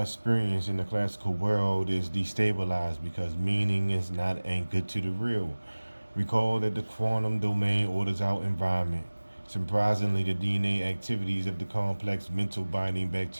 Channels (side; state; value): both; inverted; correlation -1.00